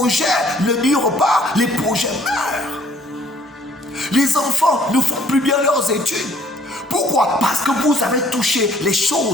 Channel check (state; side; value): normal; both; correlation 0.59